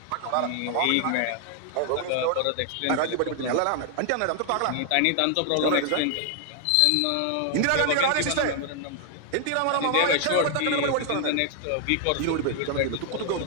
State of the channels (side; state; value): both; different; correlation 0.00